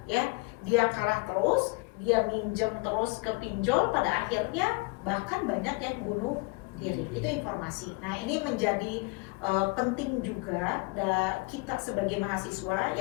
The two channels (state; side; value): quieter; right; 27.1 dB